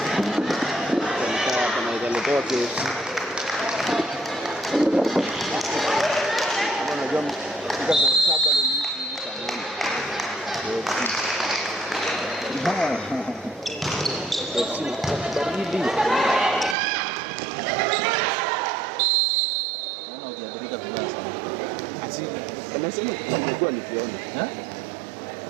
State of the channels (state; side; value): drops out; left; at 16.8 s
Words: Kama italetewa kesi. Kama unajua mfika saa 7 na nusu hivi saa 8. Baridi. Anasema nilikuwa nikiona.